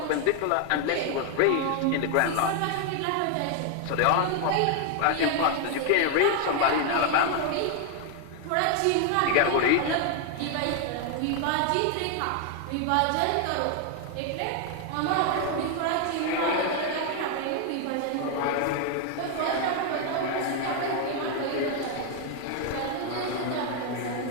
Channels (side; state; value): both; different; correlation 0.00